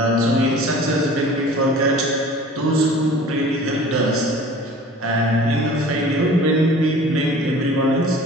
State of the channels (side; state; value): both; normal; correlation 0.45